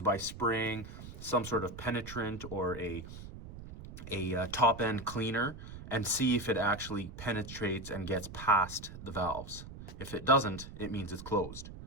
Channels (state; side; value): noise; right; rumble, 12 dB below the sound